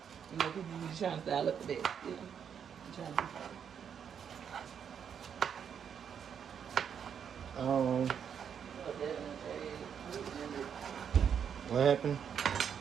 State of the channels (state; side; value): quieter; left; 7.8 dB